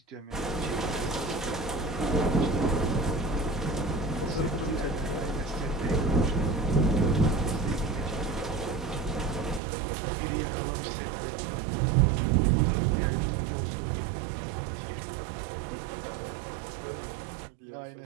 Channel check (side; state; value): left; drops out; at 9.6 s